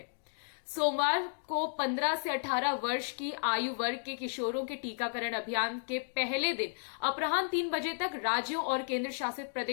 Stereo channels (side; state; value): right; silent; digital silence